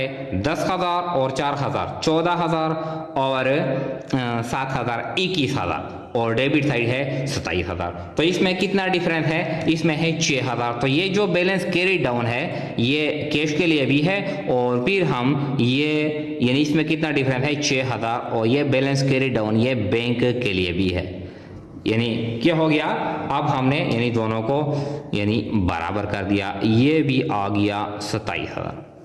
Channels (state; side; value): identical; both; correlation 1.00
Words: 10,000 और 4,000 14,000 और 7,000 21,000 और डेबिट साइड है 27,000। तो इसमें कितना डिफरेंस है, इसमें है 6,000। तो ये जो बैलेंस कैरी डाउन है ये कैश के लिए भी है और फिर हम ये यानी इसमें कितना डिफरेंस है 6,000 और ये बैलेंस कैरी डाउन ये बैंक के लिए भी है। यानी क्या हो गया, अब हमने यानी दोनों को यानी बराबर कर दिया, ये भी आ गया 27,000।